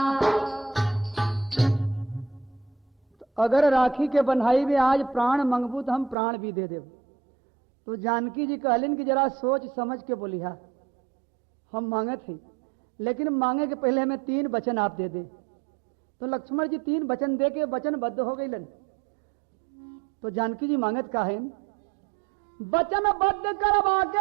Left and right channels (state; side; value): drops out; left; at 6.2 s